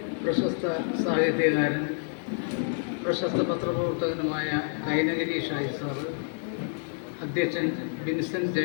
പ്രശസ്ത സാഹിത്യകാരൻ, പ്രശസ്ത പത്രപ്രവർത്തകനുമായ കൈനഗിരി ഷായി സാറ്, അധ്യക്ഷൻ Vincent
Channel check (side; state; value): right; silent; 59 dB below the other